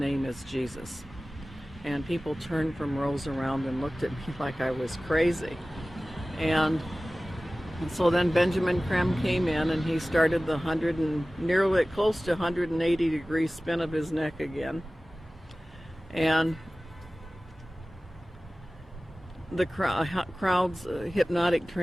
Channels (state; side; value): normal; both; correlation 0.97